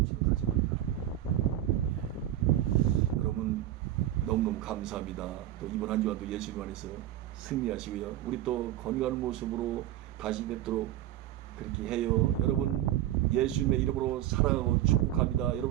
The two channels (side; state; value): left; quieter; 13.1 dB